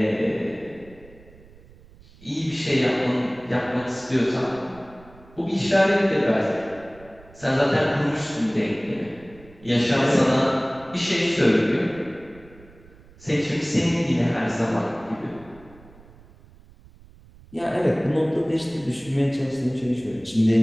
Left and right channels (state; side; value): noise; right; rumble, 24 dB below the sound